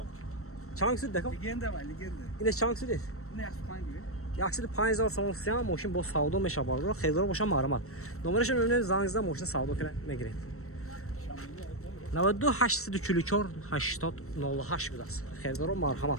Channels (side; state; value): right; late; 0.63 ms